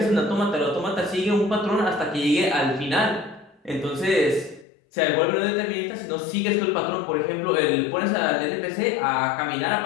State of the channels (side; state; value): right; drops out; at 4.7 s